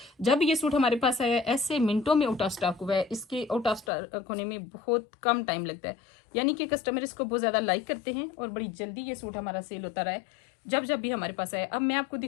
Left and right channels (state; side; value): drops out; right; at 3.9 s